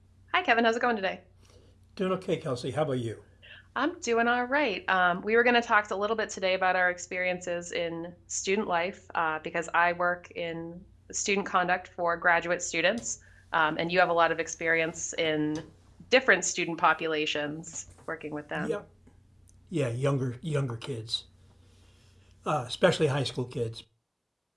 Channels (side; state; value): both; identical; correlation 1.00